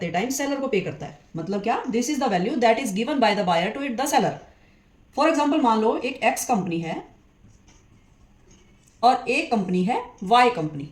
टाइम सेलर को पे करता है। मतलब क्या? This is the value that is given by the buyer to it the seller. For example, मान लो एक एक्स कंपनी है और एक कंपनी है वाई कंपनी।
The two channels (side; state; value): both; identical; correlation 1.00